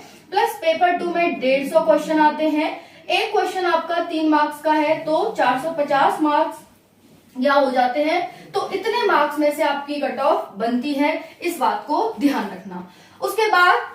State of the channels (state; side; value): identical; both; correlation 1.00